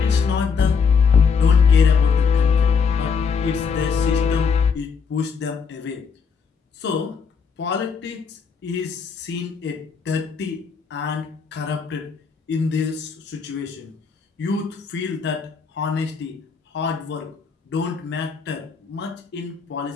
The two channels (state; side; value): quieter; right; 5.8 dB